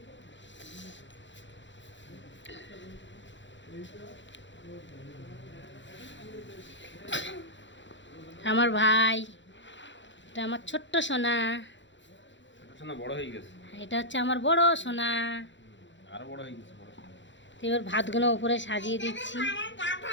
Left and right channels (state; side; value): late; right; 0.54 ms